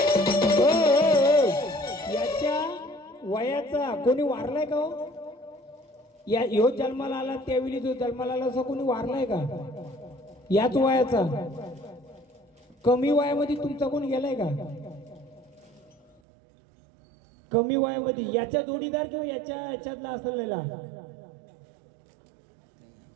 याच्या वयाचा कोणी वारलाय का हो? या ह्यो जन्माला आला त्यावेळी जो जन्माला आला असं कोणी वारलाय का? याच वयाचा. कमी वयामध्ये तुमचा कोण गेलाय का? कमी वयामध्ये याच्या जोडीदार किंवा याच्यातला असलेला?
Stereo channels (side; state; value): left; drops out; at 16.2 s